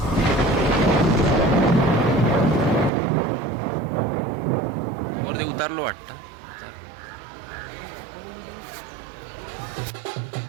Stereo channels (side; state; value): left; drops out; at 2.9 s